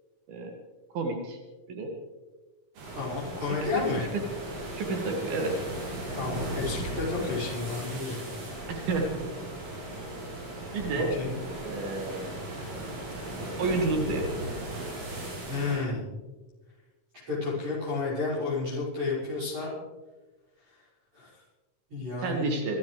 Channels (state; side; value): late; left; 13 ms